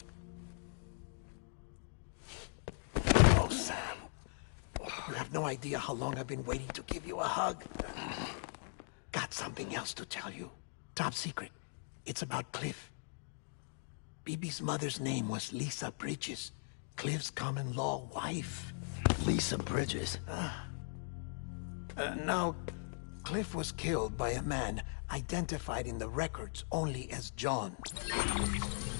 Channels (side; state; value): right; silent; digital silence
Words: Oh, Sam. You have no idea how long I've been waiting to give you a hug. Got something else to tell you. Top secret. It's about Cliff. Bibi's mother's name was Lisa Bridges, Cliff's common-law wife. Lisa Bridges? Now, Cliff was killed by a man identified in the records only as John.